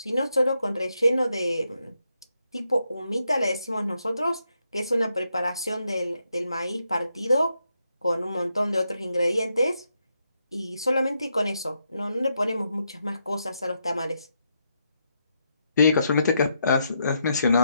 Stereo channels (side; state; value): both; inverted; correlation -0.81